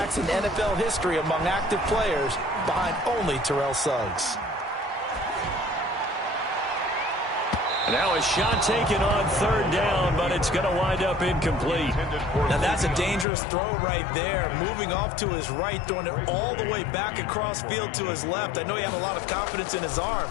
in NFL history among active players, behind only Terrell Suggs. Now a shot taken on 3rd down, but it's going to wind up incomplete. Now that's a dangerous throw right there. Moving off to his right, throwing it all the way back across field to his left. I know he had a lot of confidence in his arm.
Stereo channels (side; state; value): right; drops out; at 13.2 s